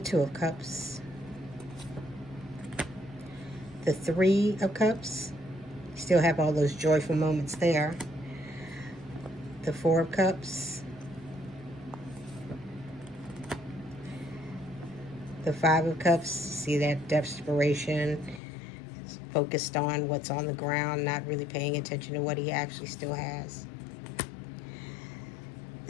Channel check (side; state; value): right; drops out; at 18.4 s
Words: of Cups, the Three of Cups, still have all those joyful moments there, the Four of Cups, the Five of Cups, see that desperation, focused on what's on the ground, not really paying attention to what he actually still has.